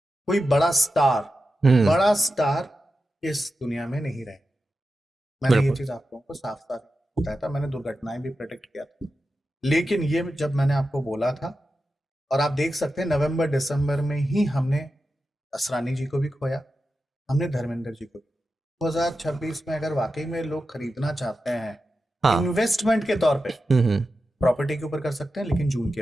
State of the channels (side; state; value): both; normal; correlation 0.91